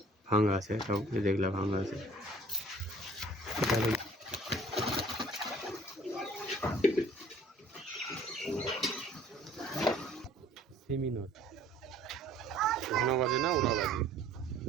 ভাঙা আছে তাও দেখলাম ভাঙা আছে সেমিনর ঘন বাজে না ওরা বাজে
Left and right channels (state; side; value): normal; both; correlation 0.53